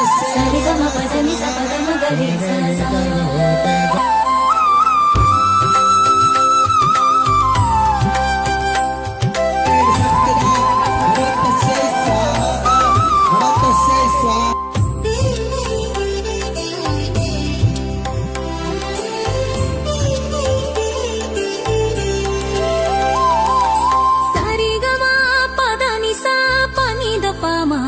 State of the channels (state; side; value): identical; both; correlation 1.00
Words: సరిగమ పదని స పదమ గరిస